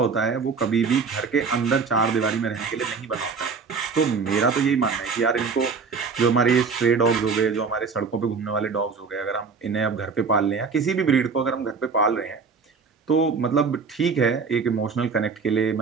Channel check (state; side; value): quieter; left; 5.1 dB